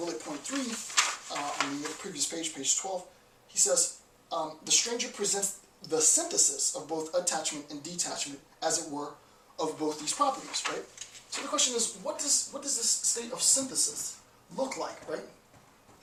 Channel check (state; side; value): identical; both; correlation 1.00